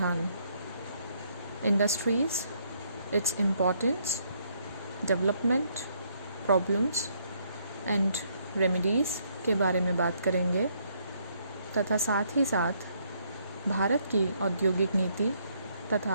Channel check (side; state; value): both; inverted; correlation -0.71